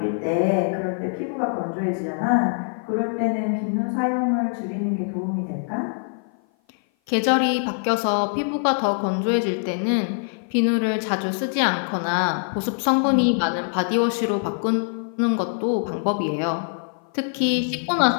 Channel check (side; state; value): right; silent; 56 dB below the other